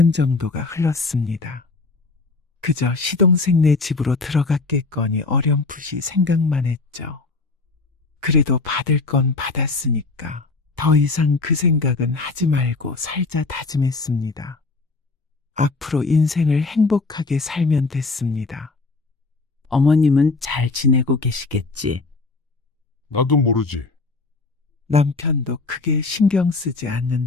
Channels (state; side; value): quieter; right; 3.7 dB